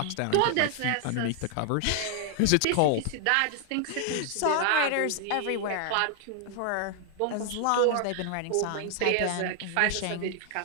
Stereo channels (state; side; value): different; both; correlation 0.00